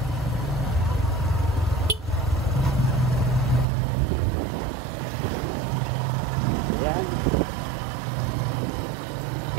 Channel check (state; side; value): drops out; left; at 3.7 s